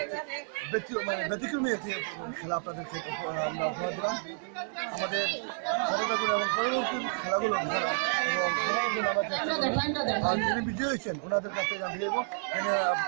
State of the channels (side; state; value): left; silent; digital silence